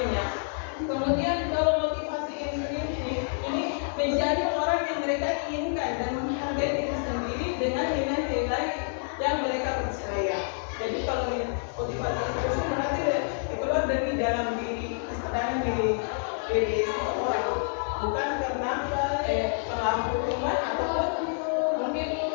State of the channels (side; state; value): right; silent; digital silence